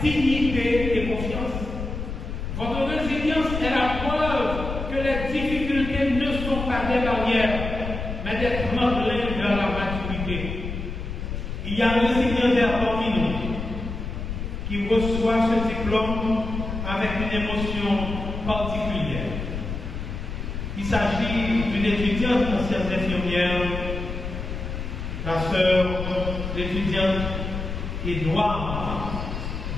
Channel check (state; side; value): noise; left; rumble, 6 dB below the sound